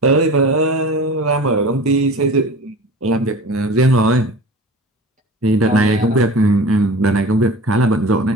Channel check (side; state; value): both; normal; correlation 0.36